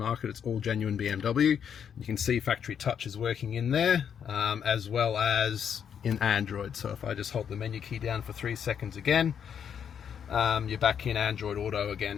it's all genuine BMW. You can see factory touch is working in there, as well as in Android. So if I just hold the menu key down for 3 seconds again, you're back in Android Auto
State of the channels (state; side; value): quieter; right; 8.0 dB